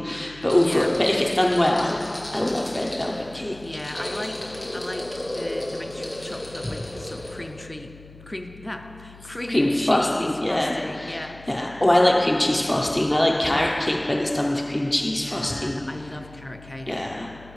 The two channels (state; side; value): noise; left; hum, 21 dB below the sound